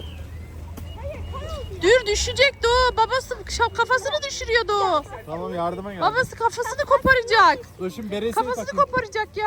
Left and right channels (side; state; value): both; identical; correlation 1.00